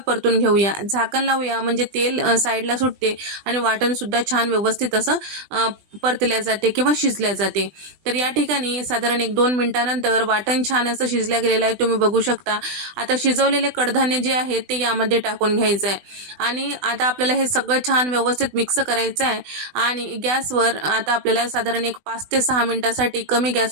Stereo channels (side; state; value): left; late; 20 ms